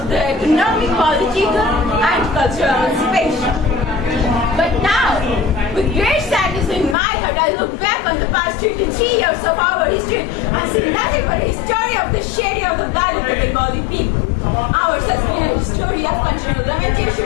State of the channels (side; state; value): right; drops out; at 7.0 s